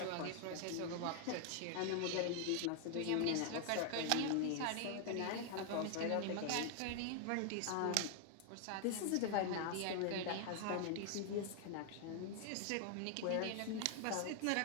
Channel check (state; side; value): different; both; correlation 0.00